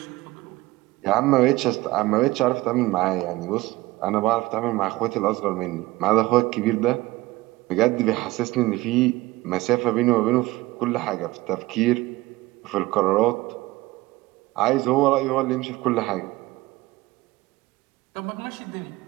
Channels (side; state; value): left; quieter; 19.5 dB